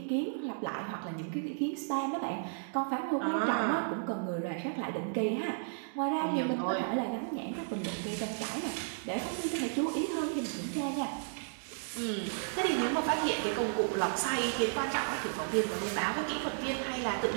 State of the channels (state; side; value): silent; left; digital silence